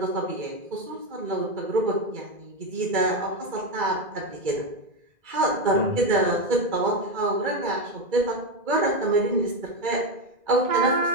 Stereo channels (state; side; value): late; left; 2.0 ms